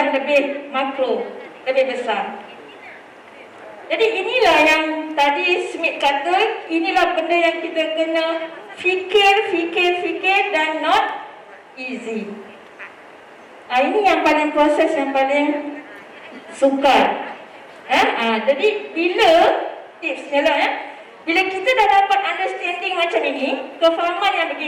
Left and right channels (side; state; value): both; identical; correlation 1.00